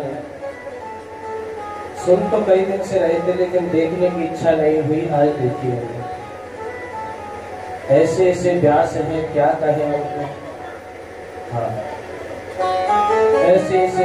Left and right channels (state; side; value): identical; both; correlation 1.00